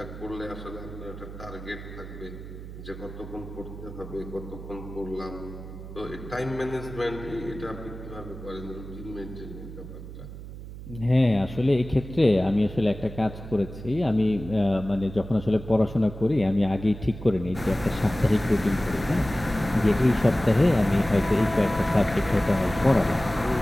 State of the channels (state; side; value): noise; right; hum, 12 dB below the sound